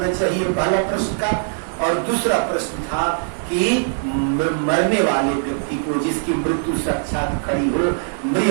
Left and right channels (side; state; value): left; silent; 65 dB below the other